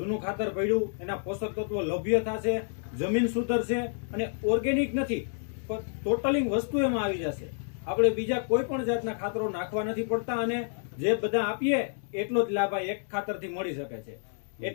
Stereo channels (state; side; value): silent; right; 58 dB below the other